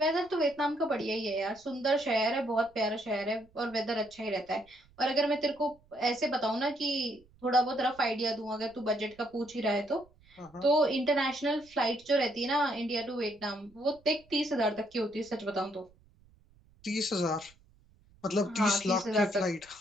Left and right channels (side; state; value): right; noise; rumble, 29 dB below the sound